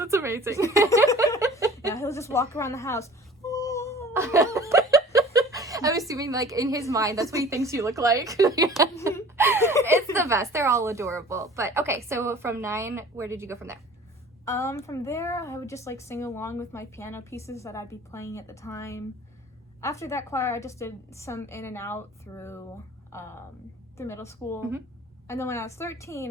amazing. Yeah, he'll just walk around the house. I'm assuming, like, in his mind, that's what he thinks you look like. It's the best. They're all adorable. But, okay, so from 9, where did you go from there? From there, I would just, like, sing along with my piano pieces that I'd be playing at the time. After that choir, I just did some in and out through middle school. And then when I was 13,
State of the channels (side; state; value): both; normal; correlation 0.45